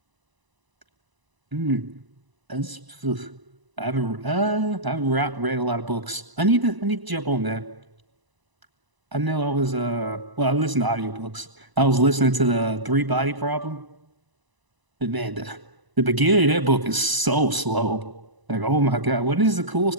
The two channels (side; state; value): left; late; 1.0 ms